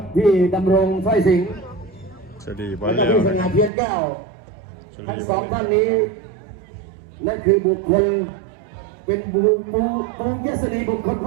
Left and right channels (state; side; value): drops out; left; at 3.7 s